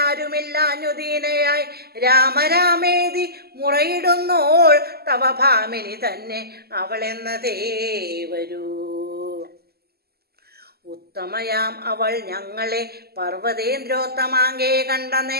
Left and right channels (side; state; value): left; late; 0.46 ms